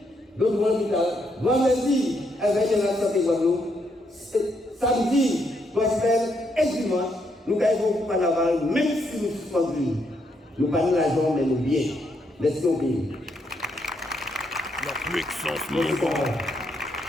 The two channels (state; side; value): normal; both; correlation 0.76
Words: nous allons l'hôpital, vendredi, avec la santé Guadeloupe, samedi, gospel et dimanche, nous gagnons pour carnaval, même si nous suspendons. Nous parlons l'argent, mais nous bien. Merci au pays. La puissance mouvante.